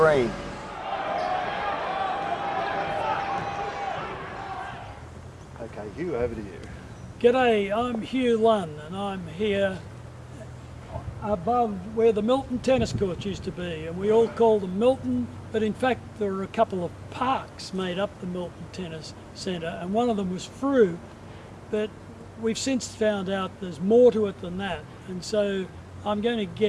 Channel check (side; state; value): both; identical; correlation 1.00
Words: Okay, Hugh, over to you. G'day, I'm Hugh Lunn and I'm here above where the Milton tennis courts used to be, and we all call them Milton, but in fact there are a couple of parks made up the Milton Tennis Centre, and one of them was Frew, but we've since found out there's more to it than that, and so I'm going to